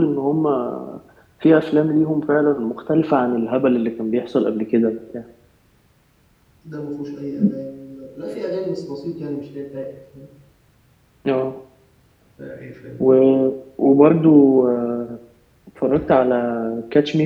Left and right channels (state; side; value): identical; both; correlation 1.00